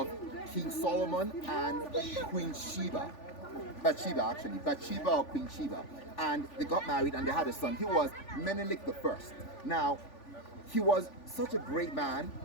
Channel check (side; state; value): right; late; 3.4 ms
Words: King Solomon and Queen Sheba. Bathsheba or Queen Sheba. And they got married and they had a son. He was Menelik I. Now, he was such a great man,